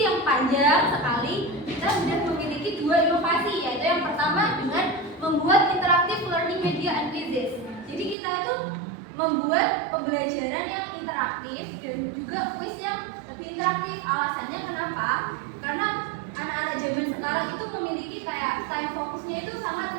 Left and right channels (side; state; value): left; drops out; at 8.2 s